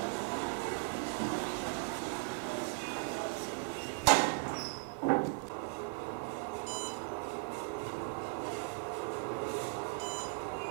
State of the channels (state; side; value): silent; left; 53 dB below the other